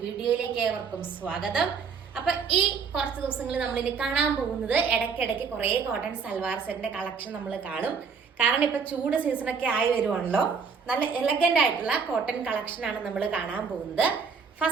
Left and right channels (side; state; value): left; quieter; 5.7 dB